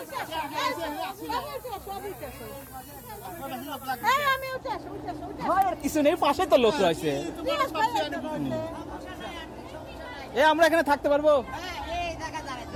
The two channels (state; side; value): identical; both; correlation 1.00